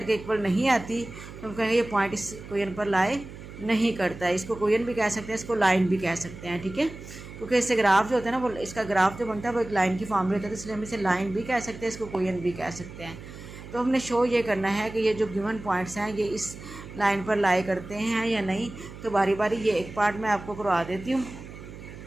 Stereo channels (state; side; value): noise; right; hum, 14 dB below the sound